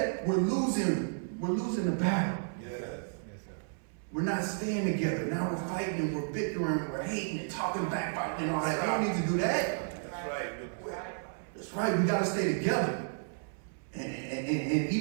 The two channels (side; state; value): left; silent; 56 dB below the other